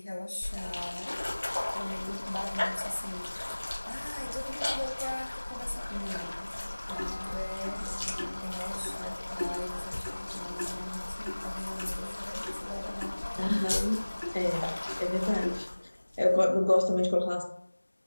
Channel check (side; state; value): both; inverted; correlation -1.00